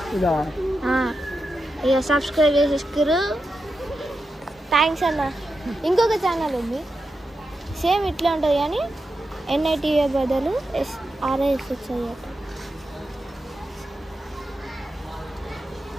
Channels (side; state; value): both; normal; correlation 0.89